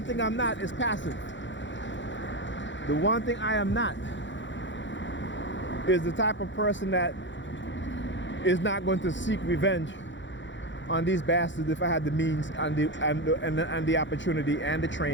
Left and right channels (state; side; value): late; right; 0.54 ms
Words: thing I'm not is passive. The one thing I am not is the type of person that is not going to seek revenge on these bastards if I had the means and the opportunity and the